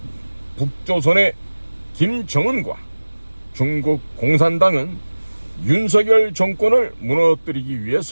북조선의 김정은과 중국 공산당은 윤석열 정권을 무너뜨리기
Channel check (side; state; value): both; inverted; correlation -1.00